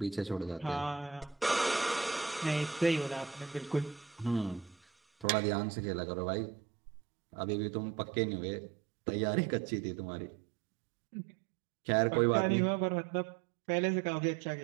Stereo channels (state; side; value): drops out; left; at 5.2 s